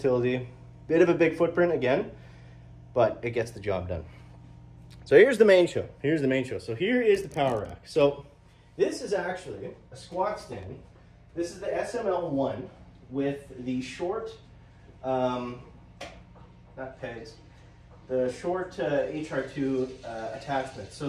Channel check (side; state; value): both; identical; correlation 1.00